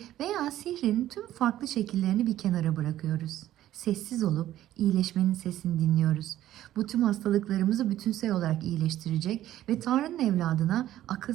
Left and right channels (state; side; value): quieter; left; 13.3 dB